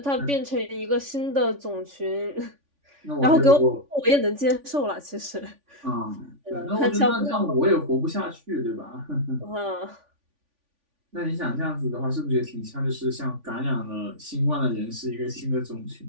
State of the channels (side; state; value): left; late; 3.5 ms